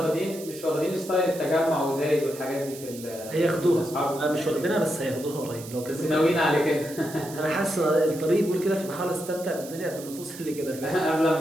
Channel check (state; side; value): noise; right; hiss, 15 dB below the sound